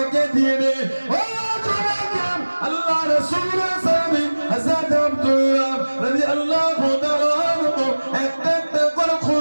দিয়ে দে। ও আল্লাহ রাসূল সাহাবী হযরত আব্দুল্লাহ রাদিয়াল্লাহু তাআলা আনহু একটা একটা করে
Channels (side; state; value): both; inverted; correlation -1.00